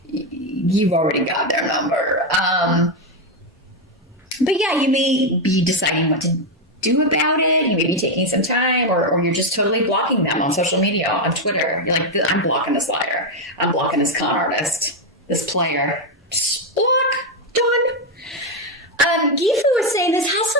you've already got their number. But you may be deciding what to do about it. You may be taking some time, or you're just totally blocking them on social media, on Twitter. You're like, I'm blocking this liar. I'm blocking this con artist. This player. Just block. Done. Gifu is saying this has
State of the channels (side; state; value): both; normal; correlation 0.05